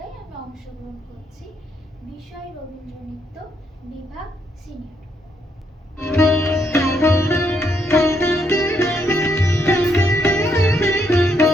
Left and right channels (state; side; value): normal; both; correlation 0.75